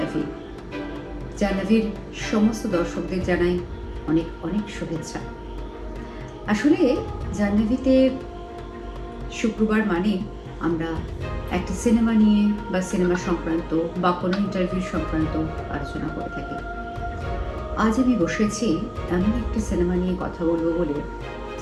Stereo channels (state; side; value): identical; both; correlation 1.00